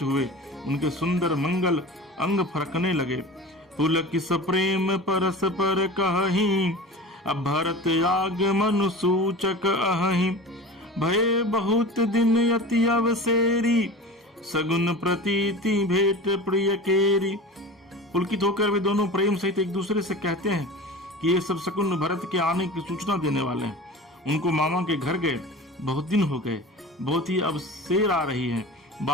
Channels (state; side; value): normal; both; correlation 0.34